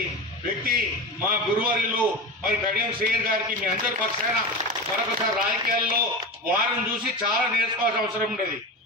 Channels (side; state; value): both; normal; correlation 0.25